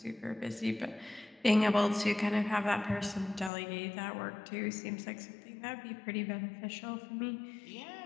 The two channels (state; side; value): drops out; right; at 3.5 s